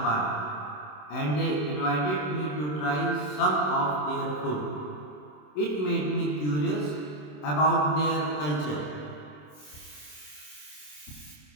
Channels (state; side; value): late; right; 27 ms